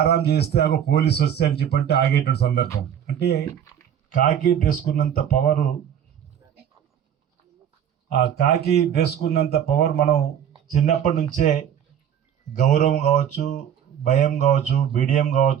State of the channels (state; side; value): quieter; left; 9.2 dB